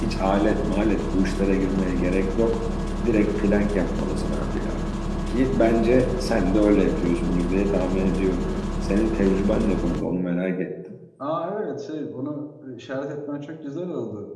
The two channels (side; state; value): both; identical; correlation 1.00